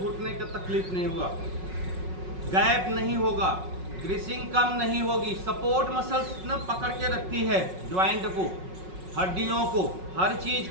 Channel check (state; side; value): late; left; 5.4 ms